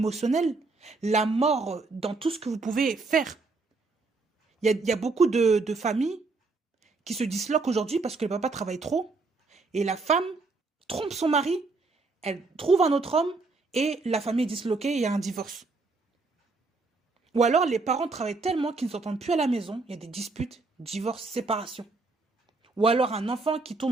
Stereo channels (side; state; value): left; quieter; 3.8 dB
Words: la mort dans tout ce que vous pouvez faire. Il y a beaucoup de familles qui se disloquent aujourd'hui parce que le papa travaille trop et la femme trompe son mari, elle trouve un autre homme et la famille est disloquée et il y a un divorce. Ou alors les parents travaillent tellement qu'ils ne s'entendent plus à la maison, il y a des disputes, divorce, séparation. Ou alors un enfant qui